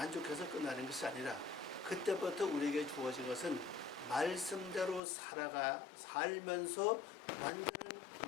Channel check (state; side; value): drops out; right; at 5.0 s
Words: 끝나는 것이 아니라 그때부터 우리에게 주어진 것은 말씀대로 살면서 완전한